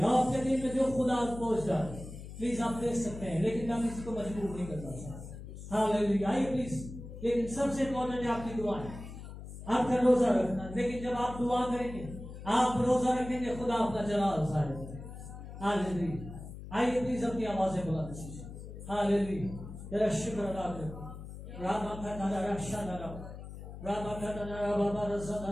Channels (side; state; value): left; noise; hum, 12 dB below the sound